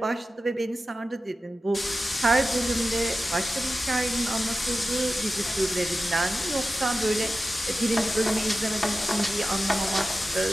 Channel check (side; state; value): both; normal; correlation 0.94